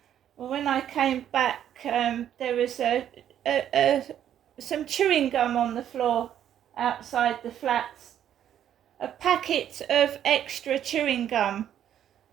Well, when I came back, there was some chewing gum on the floor outside the flats. A packet of extra chewing gum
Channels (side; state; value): left; quieter; 10.3 dB